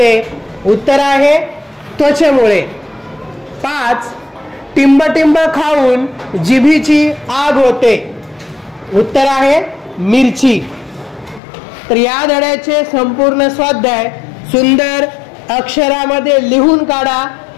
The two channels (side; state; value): right; drops out; at 11.4 s